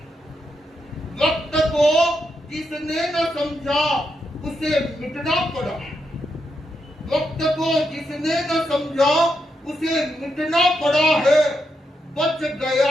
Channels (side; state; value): both; normal; correlation 0.83